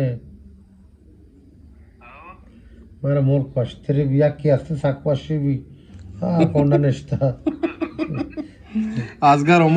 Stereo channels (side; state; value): both; identical; correlation 1.00